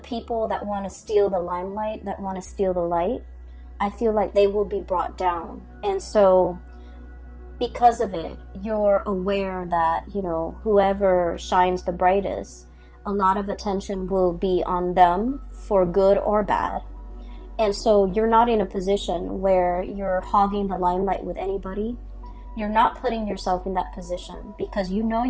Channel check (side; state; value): both; identical; correlation 1.00